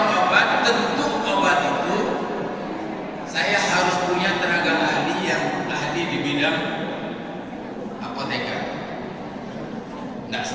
obat. Tentu obat itu saya harus punya tenaga ahli yang ahli di bidang apoteker. Nggak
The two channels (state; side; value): identical; both; correlation 1.00